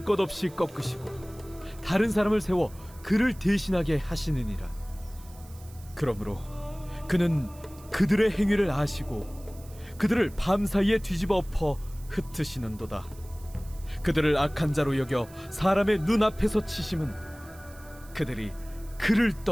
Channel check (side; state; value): right; noise; hiss, 23 dB below the sound